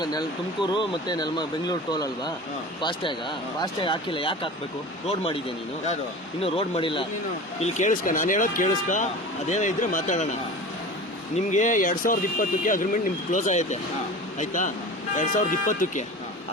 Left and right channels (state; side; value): normal; both; correlation 0.34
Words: ತುಮಕೂರು ಮತ್ತೆ ಬೆಂಗಳೂರು ಟೋಲ್ ಅಲ್ವಾ? ಫಾಸ್ಟ್ಯಾಗ್ ಹಾಕಿಲ್ಲ. ಯಾಕೆ ಹಾಕ್ಬೇಕು? ರೋಡ್ ಮಾಡಿದ್ಯಾ ನೀನು? ಇನ್ನು ರೋಡ್ ಮಾಡಿಲ್ಲ. ಇಲ್ಲಿ ಕೇಳಿಸ್ಕ, ನಾನು ಹೇಳೋದು ಕೇಳಿಸ್ಕ. ಅದೇನೋ ಇದ್ರೆ ಮಾತಾಡೋಣ. ನಿಮ್ಗೆ 2020ಕ್ಕೆ ಅಗ್ರಿಮೆಂಟ್ ನಿಮ್ಗೆ ಕ್ಲೋಸ್ ಆಗೈತೆ, ಆಯ್ತಾ? 2020ಕ್ಕೆ.